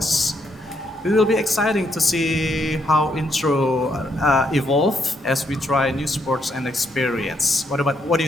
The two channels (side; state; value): both; normal; correlation 0.75